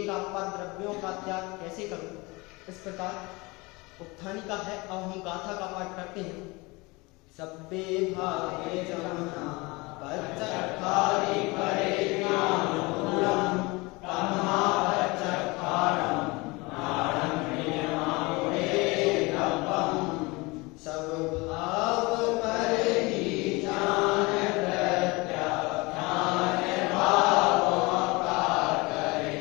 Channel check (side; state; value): right; quieter; 24.7 dB